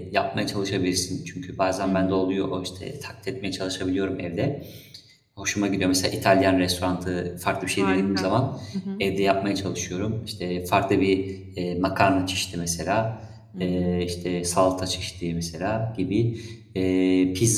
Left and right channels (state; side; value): identical; both; correlation 1.00